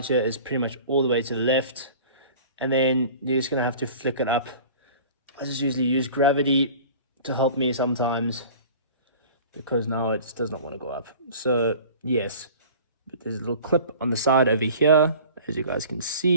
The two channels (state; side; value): inverted; both; correlation -0.43